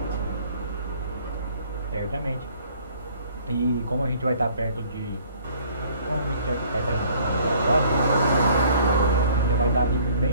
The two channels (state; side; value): inverted; both; correlation -0.57